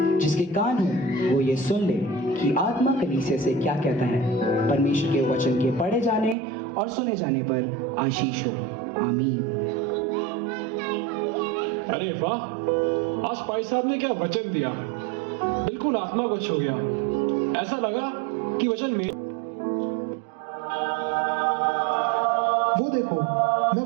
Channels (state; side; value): drops out; left; at 6.4 s